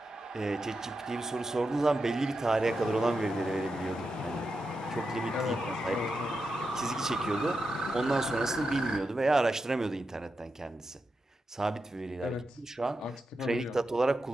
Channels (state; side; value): normal; both; correlation 0.88